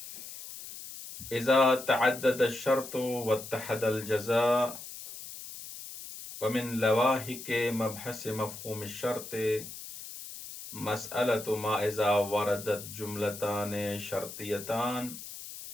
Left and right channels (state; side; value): noise; left; hiss, 12 dB below the sound